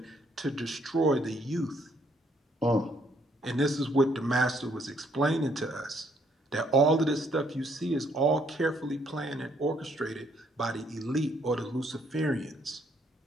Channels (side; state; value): both; normal; correlation 0.68